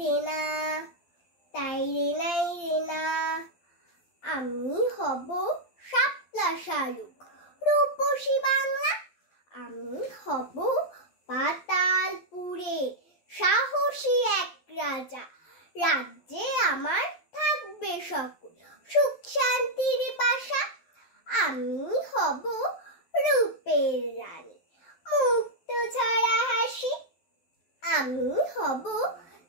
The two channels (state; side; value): late; right; 12 ms